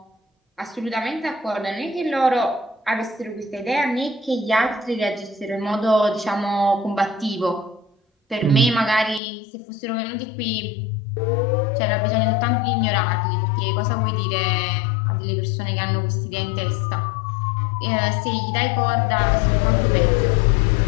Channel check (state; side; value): drops out; right; at 9.2 s